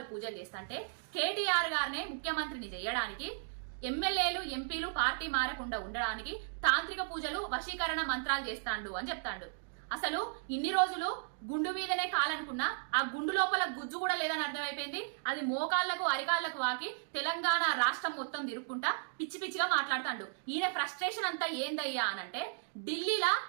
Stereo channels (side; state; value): left; silent; digital silence